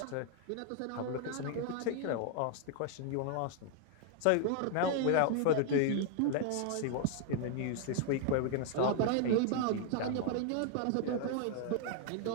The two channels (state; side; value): different; both; correlation 0.00